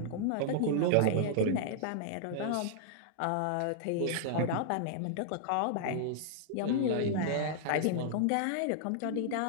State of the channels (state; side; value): different; both; correlation -0.01